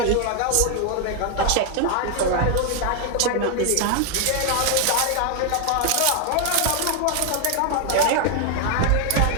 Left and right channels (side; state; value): both; different; correlation 0.01